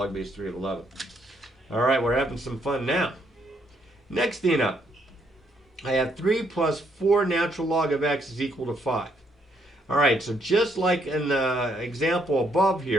base 3 of 11. All right, we're having some fun now. Next thing up, I have 3 plus 4 natural log of x is equal to 5. All right, so just like in the example above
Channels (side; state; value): both; normal; correlation 0.72